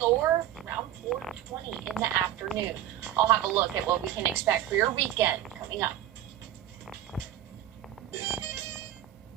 or around 4:20 in the afternoon. I'll have a look at what we can expect for your weekend coming up.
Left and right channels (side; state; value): left; quieter; 11.7 dB